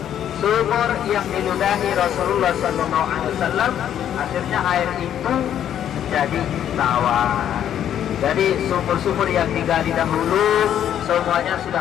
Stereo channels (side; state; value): right; quieter; 10.2 dB